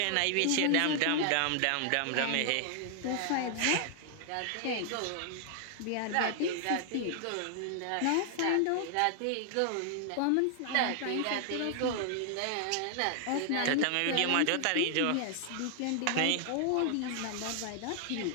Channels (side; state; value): both; different; correlation 0.00